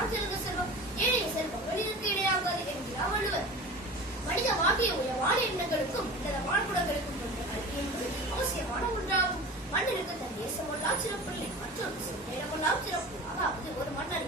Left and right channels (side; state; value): both; normal; correlation 0.35